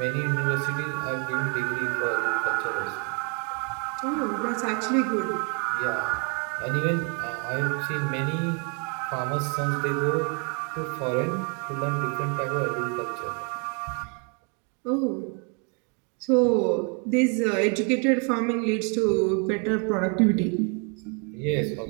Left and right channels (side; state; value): left; quieter; 37.0 dB